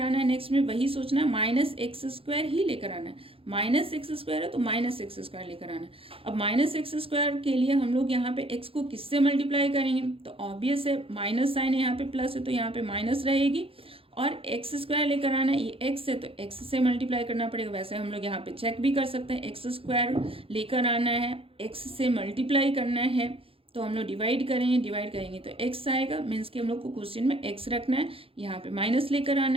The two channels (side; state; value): left; late; 0.27 ms